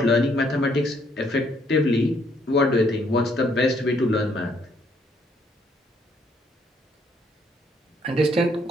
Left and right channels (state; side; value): normal; both; correlation 0.68